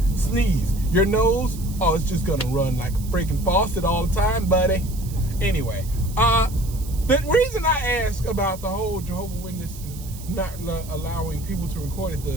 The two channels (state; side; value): noise; right; hiss, 17 dB below the sound